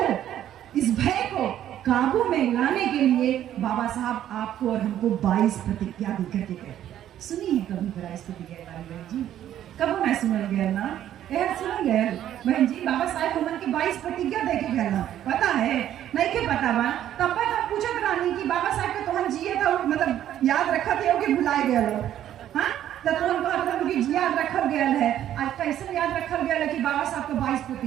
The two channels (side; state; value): left; quieter; 11.4 dB